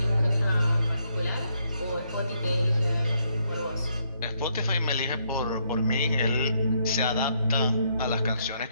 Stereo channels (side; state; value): both; inverted; correlation -0.74